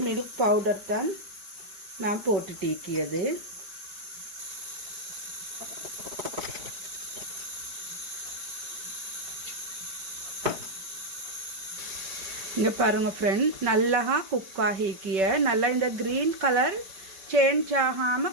மில்க் பவுடர் தான் நான் போட்டு டீக்கியது. இங்கே பாருங்கள் ஃப்ரெண்ட், நல்லா குக் ஆகிக்கிய நல்லா இந்த க்ரீன் கலர் சேஞ்ச்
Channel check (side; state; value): left; late; 5.3 ms